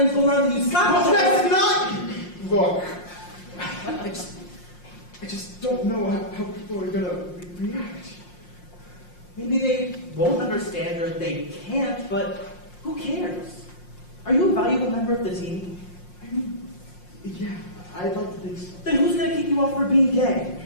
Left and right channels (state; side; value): late; right; 5.6 ms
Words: go around and you slap each That's other. not. Look, I just don't know how people are gonna react. Maybe they won't understand or they can't, but who cares? Are you a valuable member of the team? I mean, yeah, I'd like to think so. Then who's going to kick you off for being gay?